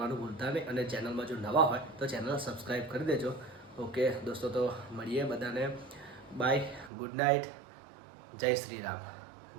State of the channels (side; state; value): left; drops out; at 6.9 s